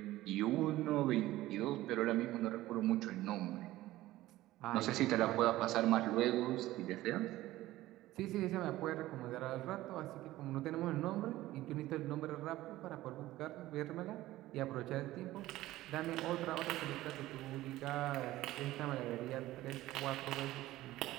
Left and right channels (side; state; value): left; quieter; 16.2 dB